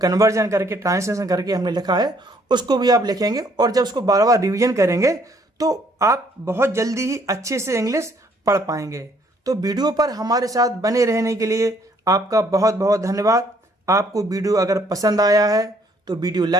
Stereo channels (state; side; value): normal; both; correlation 0.65